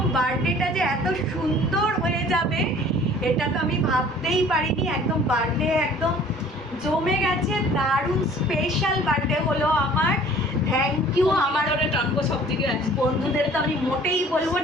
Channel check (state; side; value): normal; both; correlation 0.50